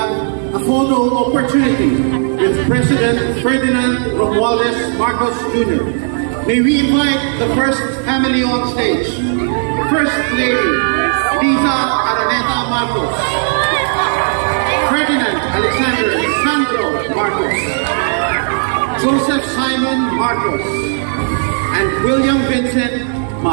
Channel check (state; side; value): silent; left; digital silence